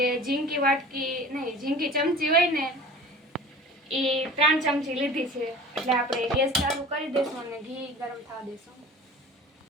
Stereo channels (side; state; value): both; normal; correlation 0.41